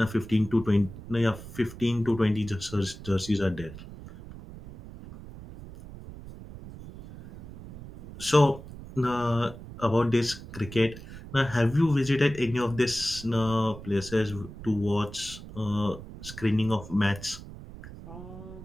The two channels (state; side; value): noise; right; rumble, 14 dB below the sound